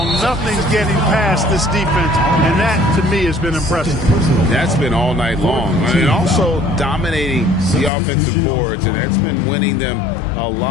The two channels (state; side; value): drops out; right; at 7.9 s